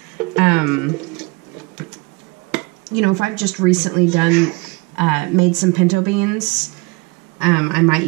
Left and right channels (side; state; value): left; quieter; 26.9 dB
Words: if I've just recently made some pinto beans, I might